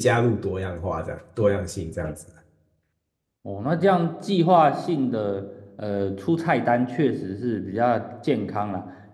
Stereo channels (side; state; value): both; identical; correlation 1.00